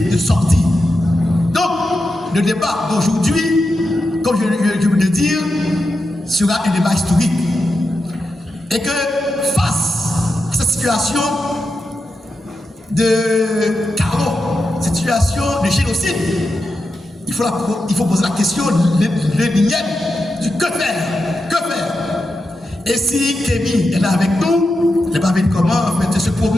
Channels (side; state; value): both; normal; correlation 0.88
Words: de sortie. Donc, le débat d'aujourd'hui, comme je veux le dire, sera un débat historique. Et que face à cette situation de chaos, cette situation de génocide, il faut poser la question, l'énième, du que faire? Que faire? Et si Kémy est là avec nous, il n'est pas venu comment en fait, se